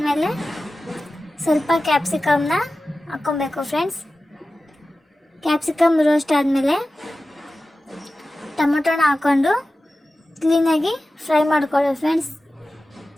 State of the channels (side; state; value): both; normal; correlation 0.95